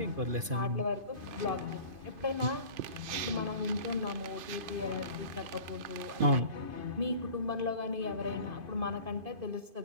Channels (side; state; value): left; late; 2.5 ms